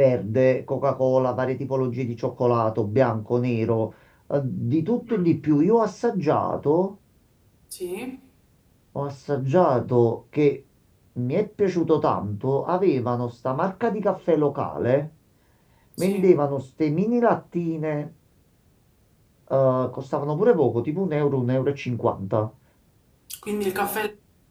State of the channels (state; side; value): identical; both; correlation 1.00